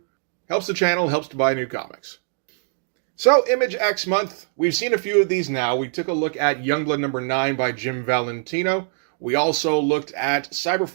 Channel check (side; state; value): left; silent; 64 dB below the other